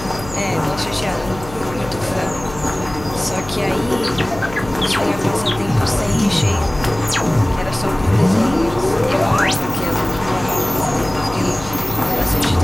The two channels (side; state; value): left; noise; hum, 15 dB below the sound